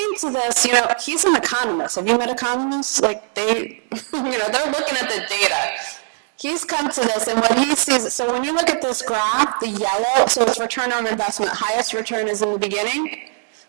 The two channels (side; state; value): left; silent; digital silence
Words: to this, he's an economist. Have you met economists? Like they're looking at the data. He's come to this, and what he sees, so when you look at this graph, the yellow, so it's return on investment, highest return is in the beginning.